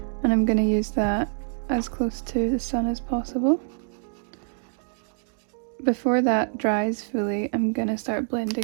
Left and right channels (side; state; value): left; silent; digital silence